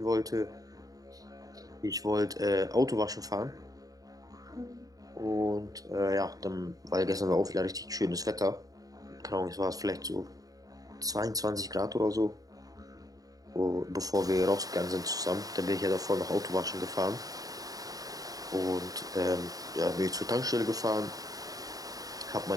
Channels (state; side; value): late; left; 0.18 ms